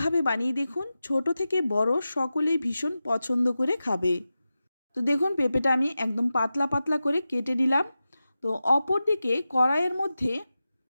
বানিয়ে দেখুন, ছোট থেকে বড় সকলেই ভীষণ পছন্দ করে খাবে। তো দেখুন, পেঁপেটা আমি একদম পাতলা পাতলা করে কেটে নিলাম। তো অপরদিকে কড়াইয়ের মধ্যে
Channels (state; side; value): inverted; both; correlation -0.93